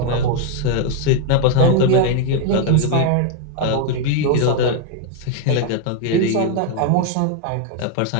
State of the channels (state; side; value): different; both; correlation 0.01